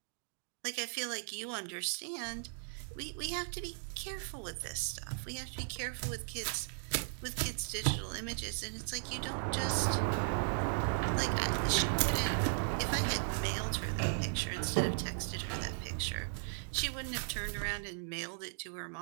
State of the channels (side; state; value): left; silent; digital silence